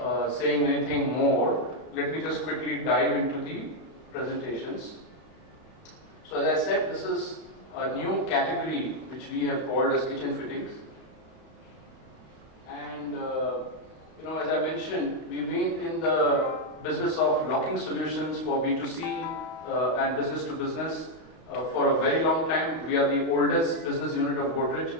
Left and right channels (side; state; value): right; late; 32 ms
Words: saying anything more, let me just quickly dive into the presentations. So as I said, this is a new category which we have called as kitchen fittings. And as I mentioned, we've been in the business of locking solutions for B2C and business to business for a very long time. We are the oldest business unit of